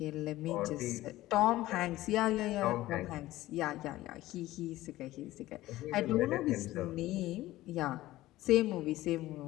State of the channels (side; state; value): right; quieter; 16.5 dB